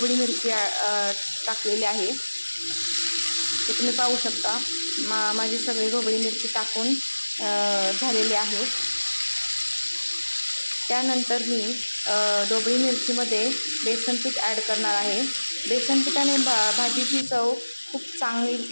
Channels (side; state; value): both; inverted; correlation -1.00